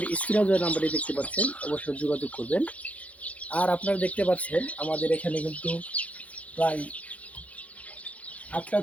স্ক্রিনে যে নাম্বারে দেখতে পাচ্ছেন অবশ্যই যোগাযোগ করবেন। আর আপনারা দেখতে পাচ্ছেন আমাদের এখানে কিন্তু প্রায় 8টা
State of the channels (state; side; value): late; right; 0.067 ms